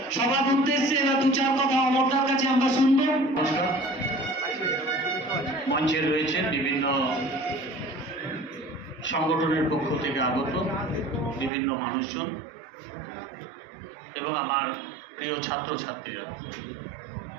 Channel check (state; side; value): drops out; left; at 11.5 s